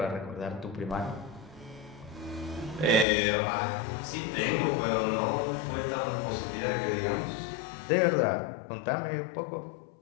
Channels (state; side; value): drops out; right; at 3.1 s